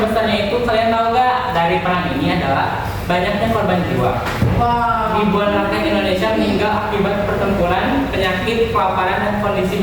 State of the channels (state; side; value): identical; both; correlation 1.00